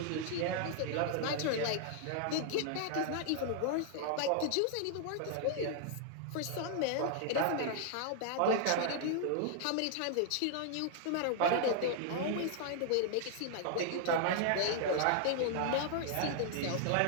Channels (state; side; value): different; both; correlation -0.01